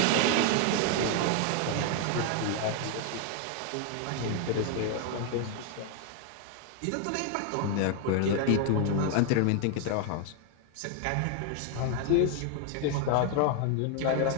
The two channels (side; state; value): both; different; correlation 0.00